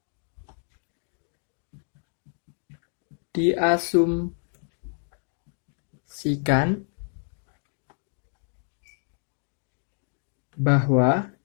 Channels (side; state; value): right; silent; 58 dB below the other